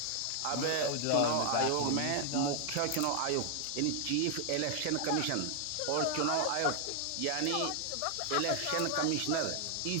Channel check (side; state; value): both; different; correlation 0.00